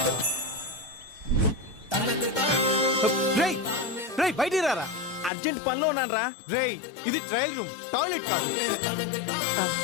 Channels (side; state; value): right; drops out; at 5.3 s